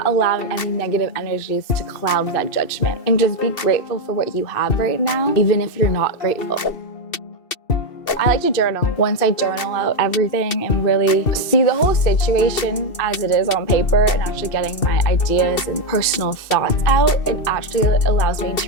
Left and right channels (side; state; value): right; late; 2.7 ms